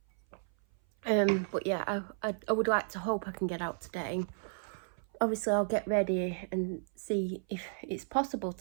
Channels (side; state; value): left; silent; 55 dB below the other